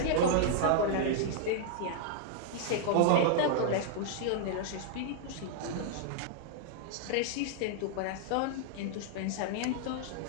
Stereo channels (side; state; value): both; different; correlation -0.01